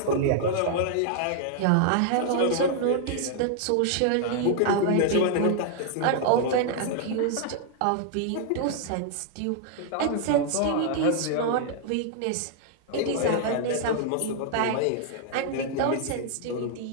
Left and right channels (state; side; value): different; both; correlation -0.01